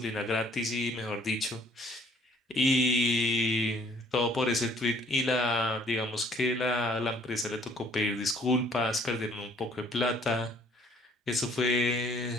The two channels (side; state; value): both; normal; correlation 0.59